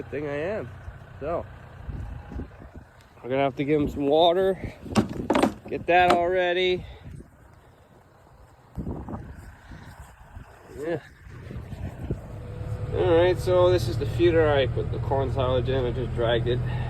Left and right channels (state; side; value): identical; both; correlation 1.00